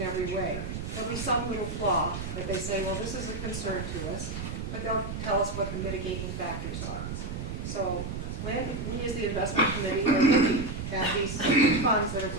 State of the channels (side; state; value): right; noise; rumble, 6 dB below the sound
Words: every way. There'll be some little flaw that they say, well, this is a concern to us, but they'll tell us what the mitigating factors are. So when we as the investment committee are looking at these funds that are